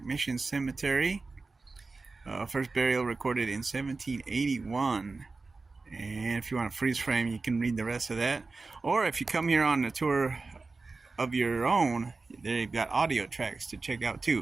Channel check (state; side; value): quieter; left; 3.8 dB